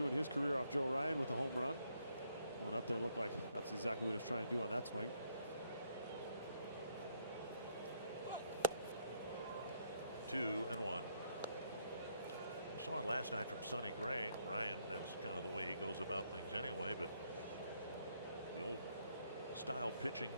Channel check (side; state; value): both; inverted; correlation -0.72